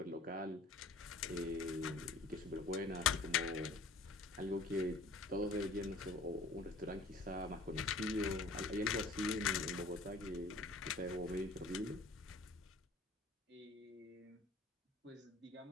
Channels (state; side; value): quieter; right; 3.2 dB